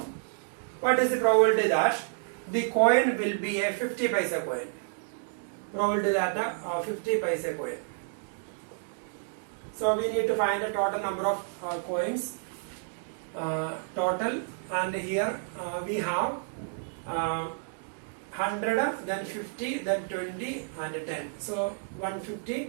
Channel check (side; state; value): left; silent; digital silence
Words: what is the probability that the coin will be a 50 paisa coin? Probability that a 50 paisa coin. So we need to find the total number of coins. Total, and here we have 100, then 50, then 20 and 10. So